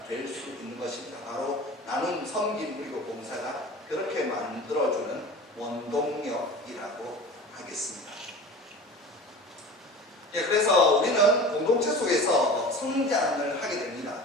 될 수 있는 것입니다. 바로 나눔, 섬김 그리고 봉사가 그렇게 만들어주는 원동력이라고 하겠습니다. 그래서 우리는 공동체 속에서 성장을 하게 됩니다.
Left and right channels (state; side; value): normal; both; correlation 0.37